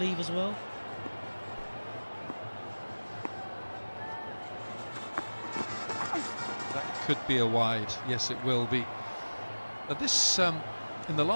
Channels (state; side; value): inverted; both; correlation -1.00